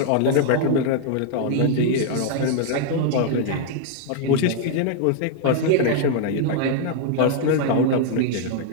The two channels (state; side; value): different; both; correlation 0.00